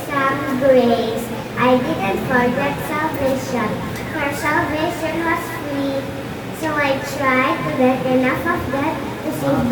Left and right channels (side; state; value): both; identical; correlation 1.00